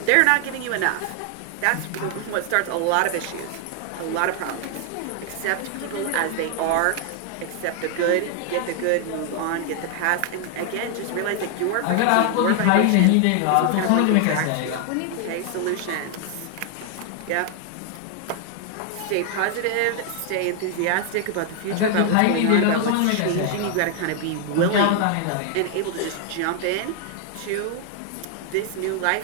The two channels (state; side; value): different; both; correlation 0.00